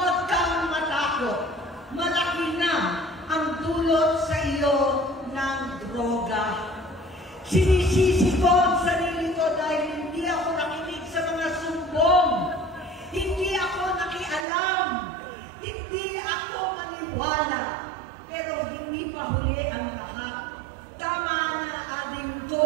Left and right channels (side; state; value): left; drops out; at 14.5 s